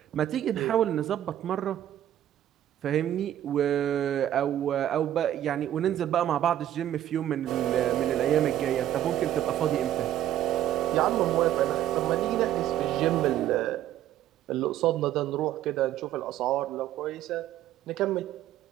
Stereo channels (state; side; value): quieter; left; 11.9 dB